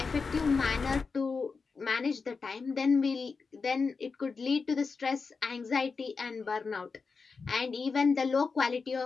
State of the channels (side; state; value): right; quieter; 4.8 dB